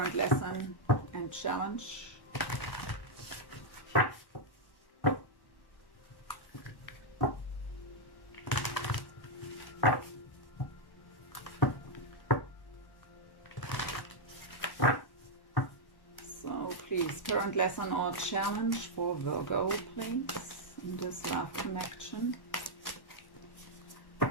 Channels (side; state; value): right; late; 1.1 ms